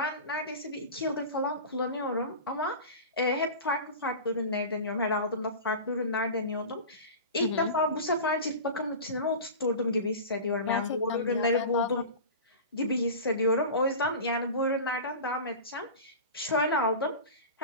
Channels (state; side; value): inverted; both; correlation -0.31